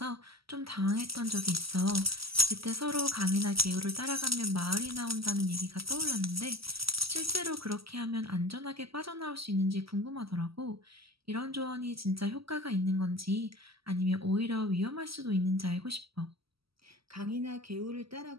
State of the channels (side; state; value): left; late; 0.75 ms